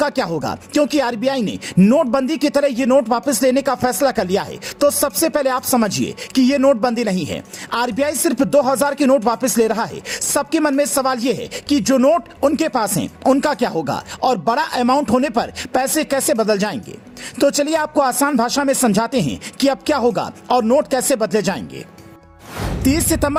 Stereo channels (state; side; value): identical; both; correlation 1.00